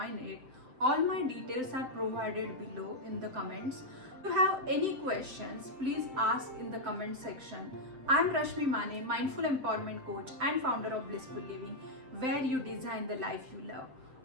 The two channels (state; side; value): late; left; 7.7 ms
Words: it. All my details are provided below in the comments. If you have any questions, please ask in the comment section. I am Rashmi Mane, Mindful Empowerment Coach and founder of Blissful Living, where you design the life you love.